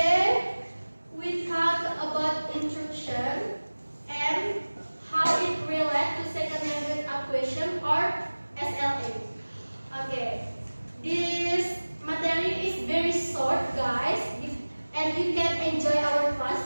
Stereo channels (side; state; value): both; inverted; correlation -1.00